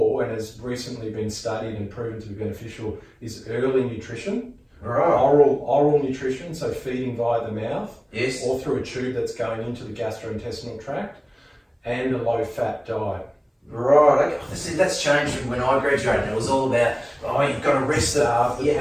and has recently been studied and proven to be beneficial, is early nutrition. Right. Oral nutrition, so feeding via the mouth. Yes. Or through a tube that's going into the gastrointestinal tract. And a low-fat diet. Right, okay. See, that's changed from when I graduated. It was all about, you've got to rest the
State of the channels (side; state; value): both; identical; correlation 1.00